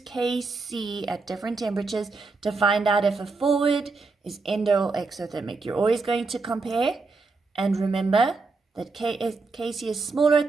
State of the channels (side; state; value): left; quieter; 4.0 dB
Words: at different temperatures to find out if a forward is endo or exothermic. You're always going to compare, and remember that Kc is smaller at